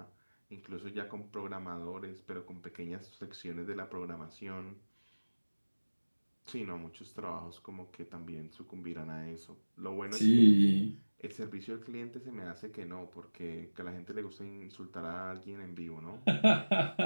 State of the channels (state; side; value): inverted; both; correlation -1.00